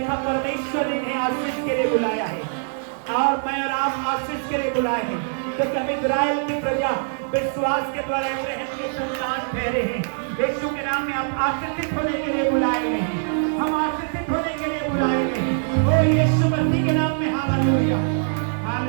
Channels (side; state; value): left; silent; digital silence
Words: परमेश्वर ने इन्हें आशीष के लिए बुलाया है, और मैं और आप आशीष के लिए बुलाए हैं, क्योंकि हम इस्राएल की प्रजा विश्वास के द्वारा इब्राहिम के संतान ठहरे हैं। यीशु के नाम में आप आशीषित होने के लिए बुलाए गए हैं, हम आशीषित होने के लिए बुलाए गए हैं। ओ यीशु मसीह के नाम में hallelujah,